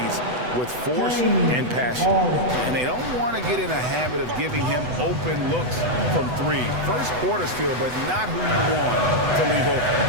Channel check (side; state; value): left; late; 8.0 ms